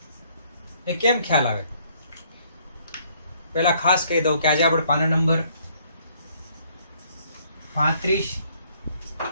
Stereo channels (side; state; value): both; inverted; correlation -0.65